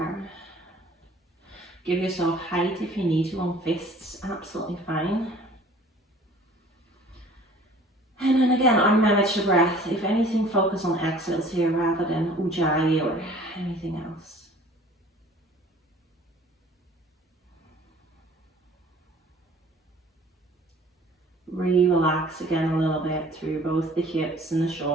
Give yourself height if you need to on fists, absolutely fine. And then again, unmanage the breath. If anything, focus on exhales here rather than ujjayi or anything else. Relax again a little bit through both the hips and the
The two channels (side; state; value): both; normal; correlation 0.51